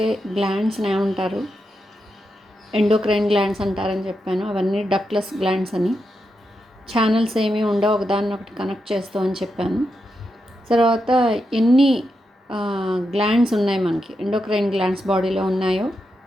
గ్లాండ్స్ని ఏమంటారు, ఎండోక్రైన్ గ్లాండ్స్ అంటారని చెప్పాను. అవన్నీ డక్ట్లెస్ గ్లాండ్స్ అని, ఛానల్స్ ఏమీ ఉండవు, ఒకదాన్ని ఒకటి కనెక్ట్ చేస్తూ అని చెప్పాను. తర్వాత ఎన్ని గ్లాండ్స్ ఉన్నాయి మనకి, ఎండోక్రైన్ గ్లాండ్స్ బాడీలో ఉన్నాయో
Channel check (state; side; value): normal; both; correlation 0.86